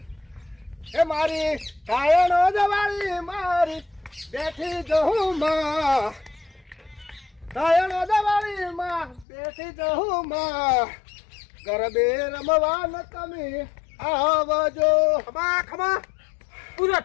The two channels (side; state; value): right; drops out; at 9.2 s